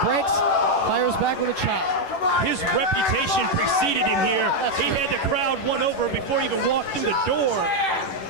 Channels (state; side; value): late; right; 11 ms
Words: brakes, fires back with a chop. His reputation preceded him here. He had the crowd won over before he even walked through the door.